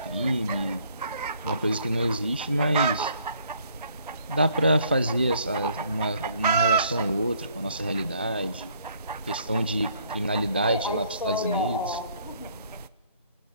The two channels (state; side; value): inverted; both; correlation -0.63